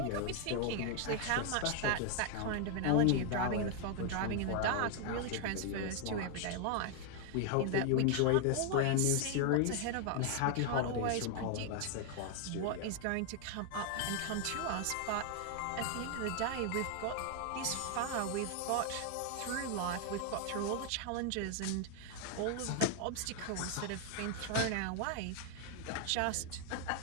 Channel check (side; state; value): both; different; correlation 0.00